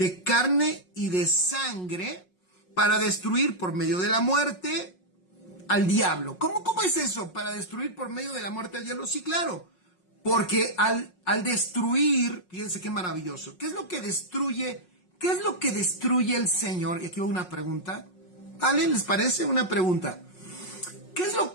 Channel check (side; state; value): right; late; 5.5 ms